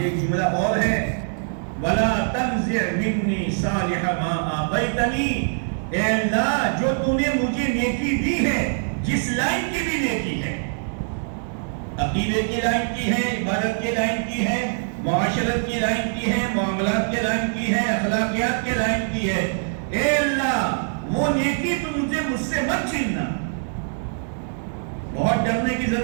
ایک جملہ اور ہے وَلَا تَنزِعْ مِنِّي صَالِحَ مَا آتَيْتَنِي، اے اللہ جو تو نے مجھے نیکی دی ہے، جس لائن کی بھی نیکی ہے، عقیدے کی لائن کی ہے، عبادت کی لائن کی ہے، معاشرت کی لائن کی ہے، معاملات کی لائن کی ہے، اخلاقیات کی لائن کی ہے، اے اللہ وہ نیکی تو مجھ سے مت چھیننا. بہت ڈرنے کی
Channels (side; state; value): left; silent; digital silence